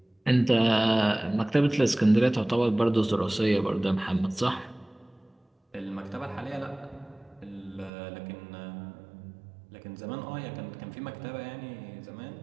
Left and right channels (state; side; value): drops out; left; at 7.9 s